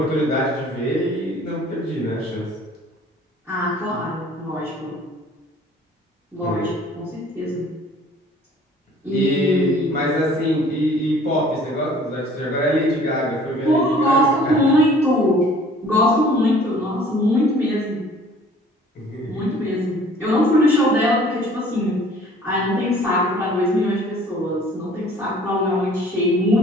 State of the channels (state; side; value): normal; both; correlation 0.52